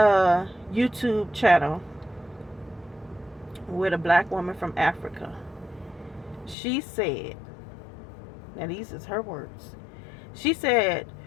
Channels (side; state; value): right; drops out; at 6.6 s